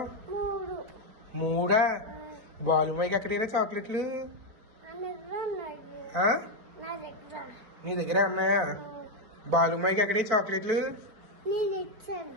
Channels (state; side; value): late; left; 4.7 ms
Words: 3. బాలుమాయికి ఎక్కడైనా చాక్లెట్లు? నీ దగ్గర ఉన్నాయా? బాలుమాయికి ఎక్కడే చాక్లెట్లు?